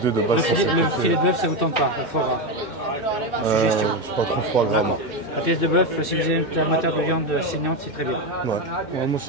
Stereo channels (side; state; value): right; late; 2.1 ms